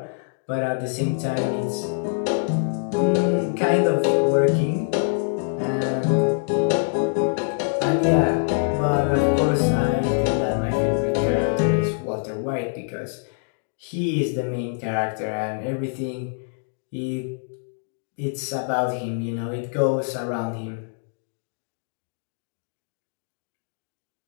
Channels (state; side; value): silent; right; digital silence